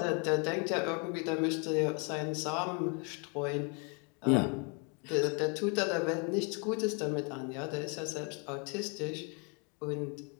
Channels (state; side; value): quieter; right; 35.5 dB